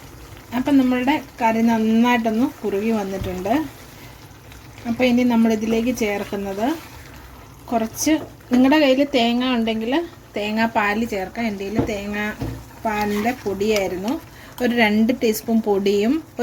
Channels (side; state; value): both; identical; correlation 1.00